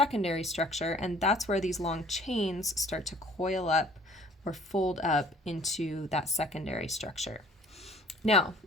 structure, and that's where these long chains start to coil up or fold up into that secondary structure. Now,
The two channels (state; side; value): normal; both; correlation 0.54